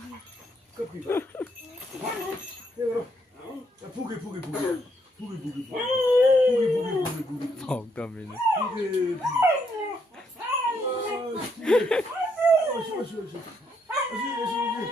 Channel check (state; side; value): normal; both; correlation 0.74